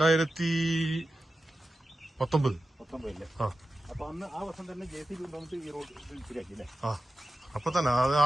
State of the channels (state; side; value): normal; both; correlation 0.93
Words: അപ്പൊ അന്ന് ആ വർഷം തന്നെ JCB കൊണ്ടുവന്നിട്ട് ഈ റോഡ് ശരിയാക്കി അല്ലേ? അപ്പൊ തന്നെ ആ